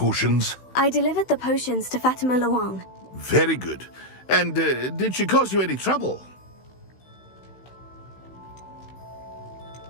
I delivered the potions to Fatima Luang. Very good. And did she cause you any trouble?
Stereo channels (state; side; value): late; right; 16 ms